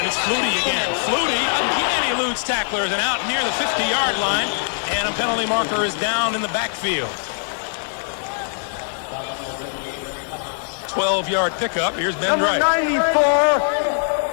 it's Flutie again. Flutie again eludes tacklers and out near the 50-yard line, and a penalty marker is down in the backfield. 12-yard pickup. Here's Ben Number Wright. 94,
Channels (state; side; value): silent; right; 65 dB below the other